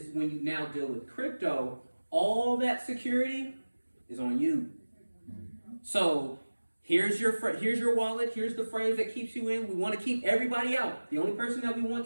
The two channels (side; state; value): both; inverted; correlation -1.00